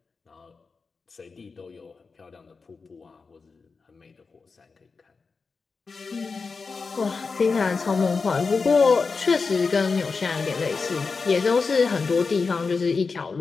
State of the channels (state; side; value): quieter; right; 4.6 dB